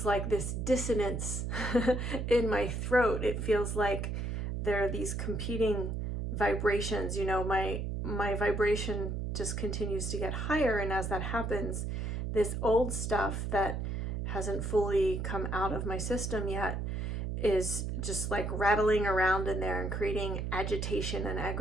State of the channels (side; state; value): right; noise; hum, 2 dB below the sound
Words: like this dissonance in my throat. It feels like there are these competing vibrations. My vibration just continues to get higher, and as that happens, this old stuff that hasn't fully come out of my system yet is just like rattling around in there and creating agitation and